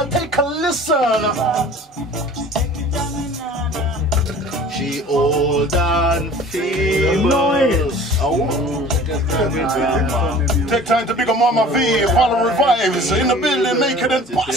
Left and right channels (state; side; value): normal; both; correlation 0.45